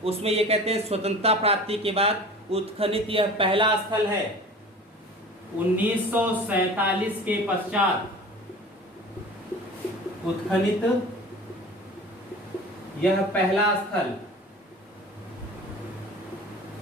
उसमें ये कहते हैं स्वतंत्रता प्राप्ति के बाद उत्खनित यह पहला स्थल है। 1947 के पश्चात उत्खनित यह पहला स्थल।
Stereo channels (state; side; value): normal; both; correlation 0.40